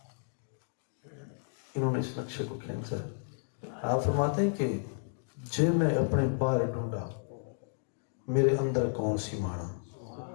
انہوں نے اس نقشے کو کھینچا ہے. آپ فرماتے ہیں کہ جے میں اپنے باہر ڈھونڈا میرے اندر کون سی مانا.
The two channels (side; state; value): right; silent; digital silence